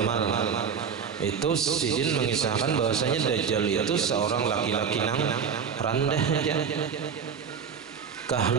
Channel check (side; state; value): left; quieter; 6.7 dB